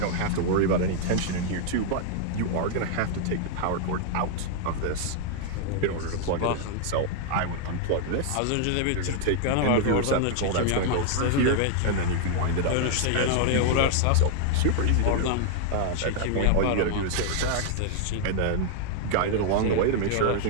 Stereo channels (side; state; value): both; different; correlation 0.00